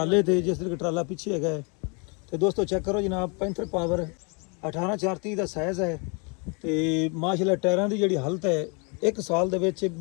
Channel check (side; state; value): right; quieter; 33.8 dB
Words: ਤੇ, ਜਿਸ ਤਰੀਕੇ ਟਰਾਲਾ ਪਿੱਛੇ ਹੈਗਾ ਹੈ। ਤੇ ਦੋਸਤੋ ਚੈੱਕ ਕਰੋ ਜਨਾਬ, ਪੈਂਥਰ ਪਾਵਰ 18/4/30 ਦਾ ਸਾਈਜ਼ ਹੈ। ਤੇ ਮਾਸ਼ਾਅੱਲਾ ਟਾਇਰਾਂ ਦੀ ਜਿਹੜੀ ਹਾਲਤ ਹੈ 1 ਸਾਲ ਦੇ ਵਿੱਚ